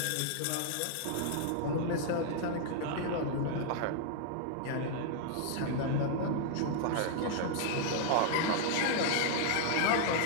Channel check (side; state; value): both; different; correlation -0.01